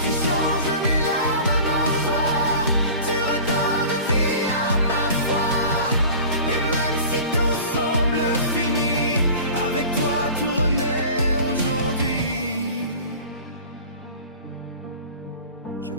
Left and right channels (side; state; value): both; inverted; correlation -0.40